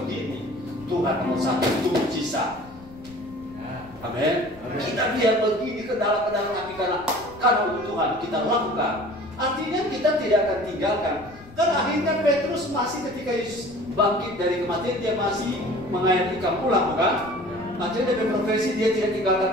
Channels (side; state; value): left; noise; rumble, 22 dB below the sound